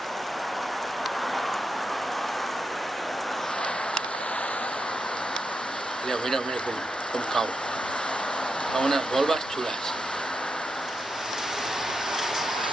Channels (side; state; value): both; normal; correlation 0.86